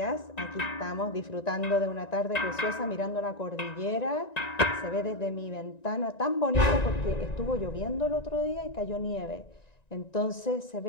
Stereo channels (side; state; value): right; late; 1.9 ms